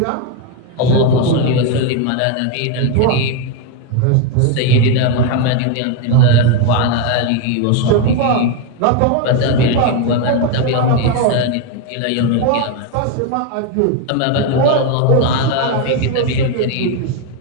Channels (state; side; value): different; both; correlation 0.02